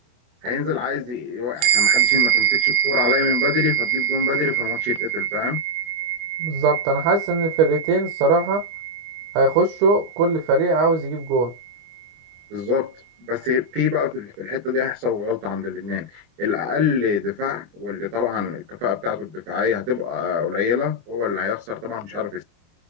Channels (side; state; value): left; late; 25 ms